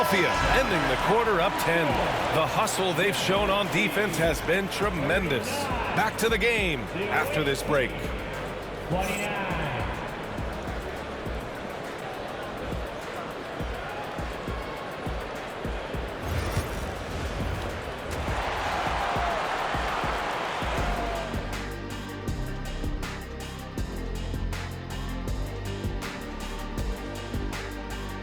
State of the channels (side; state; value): both; identical; correlation 1.00